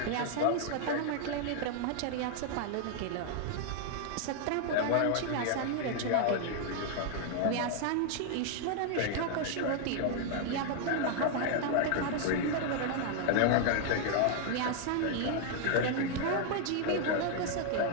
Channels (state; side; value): different; both; correlation 0.00